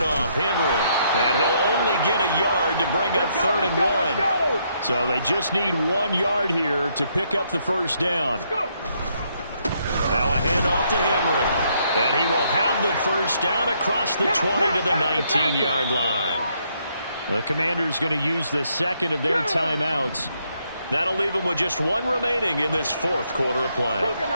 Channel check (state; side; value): inverted; both; correlation -0.73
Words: Henry. And he'll only get a yard to bring up 3rd and 1. So they just need 1 yard here to pick up the first down. Now a handoff to Henry. And he will have the first down across the 20 to the 19-yard line. The Commanders going to use the second of their timeouts. That'll leave them with just one remaining in this fourth quarter of play.